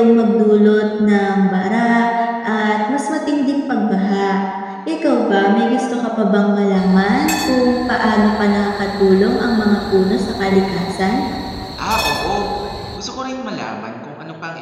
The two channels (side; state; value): both; identical; correlation 1.00